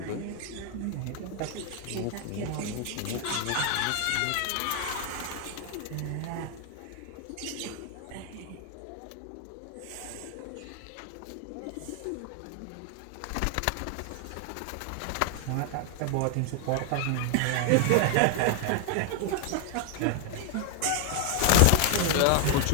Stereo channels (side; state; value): both; different; correlation 0.00